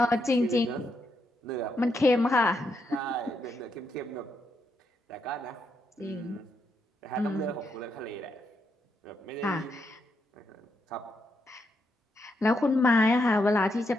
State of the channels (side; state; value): both; normal; correlation 0.80